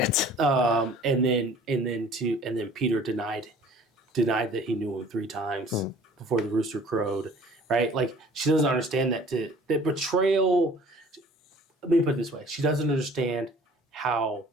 And then Peter denied that he knew him 3 times before the rooster crowed, right? Like she doesn't understand that betrayal. Let me put it this way: she doesn't understand how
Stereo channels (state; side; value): normal; both; correlation 0.50